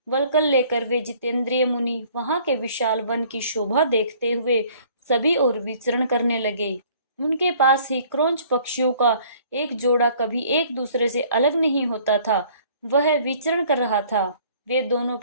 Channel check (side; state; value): both; inverted; correlation -0.56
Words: वलकल लेकर वे जितेंद्रिय मुनि वहां के विशाल वन की शोभा देखते हुए सभी ओर विचरण करने लगे। उनके पास ही क्रोंच पक्षियों का एक जोड़ा कभी एक दूसरे से अलग नहीं होता था, वह विचरण कर रहा था। वे दोनों